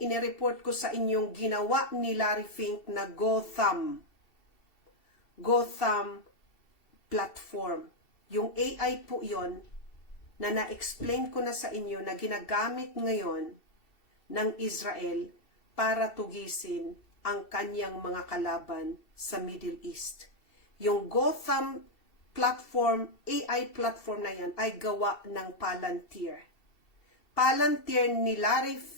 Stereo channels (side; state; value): right; late; 2.7 ms